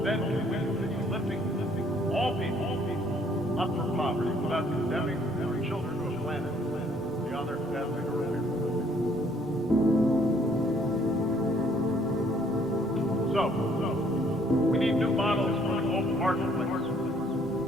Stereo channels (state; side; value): normal; both; correlation 0.63